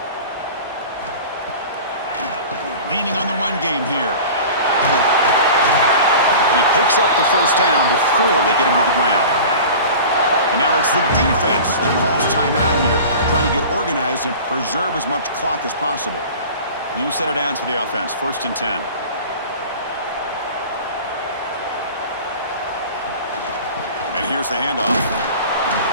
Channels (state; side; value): inverted; both; correlation -0.38